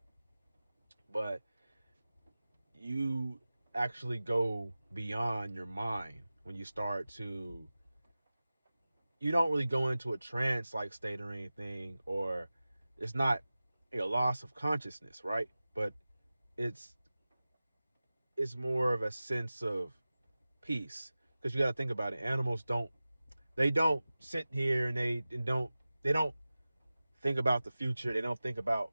but you actually go beyond your mind when you start to, you don't really go into a trance like state or anything, or it's not a loss of consciousness, right? But it's more of a sense of peace. Because you got to think about it. Animals don't sit here and they don't think about the future. They don't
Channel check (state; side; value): inverted; both; correlation -0.96